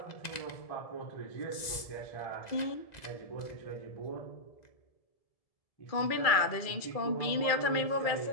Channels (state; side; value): late; right; 2.0 ms